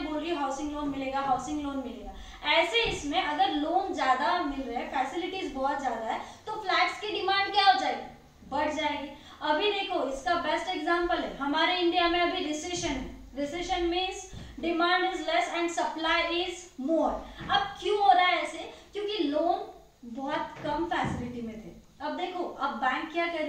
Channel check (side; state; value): both; identical; correlation 1.00